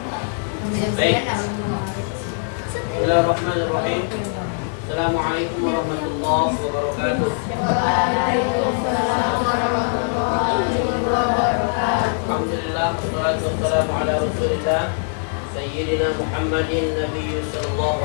Bismillahirrahmanirrahim. Assalamualaikum warahmatullahi wabarakatuh. Alhamdulillah, wassalatu wassalamu ala rasulillah Sayyidina Muhammadin Nabiyyu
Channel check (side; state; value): right; silent; 65 dB below the other